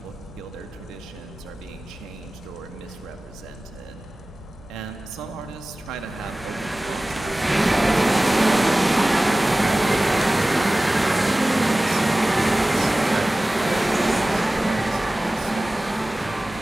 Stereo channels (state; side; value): noise; right; hum, 22 dB below the sound